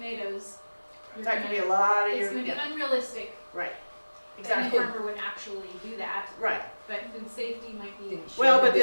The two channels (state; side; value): inverted; both; correlation -1.00